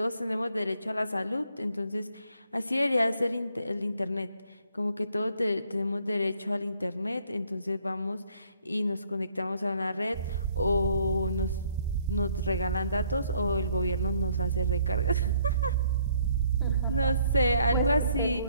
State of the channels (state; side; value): inverted; both; correlation -0.65